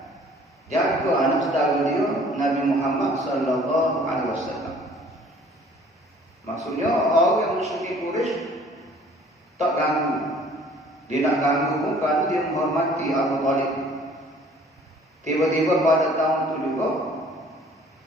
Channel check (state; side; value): normal; both; correlation 0.54